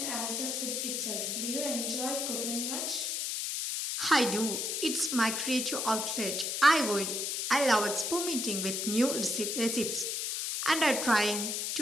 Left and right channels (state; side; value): noise; left; hiss, 1 dB below the sound